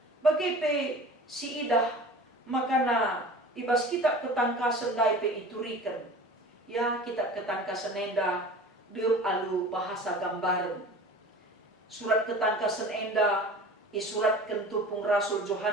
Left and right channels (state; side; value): normal; both; correlation 0.40